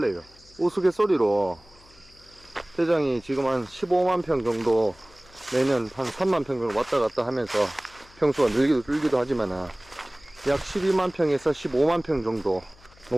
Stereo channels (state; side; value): noise; left; hum, 26 dB below the sound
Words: 우스갯소리로 대장이 지금 한 15만 평 정도 매년 한 3만 평 정도 왔다 갔다 하면서 평수가 늘기도 하지만 약 12만 평에서 15만 평 정도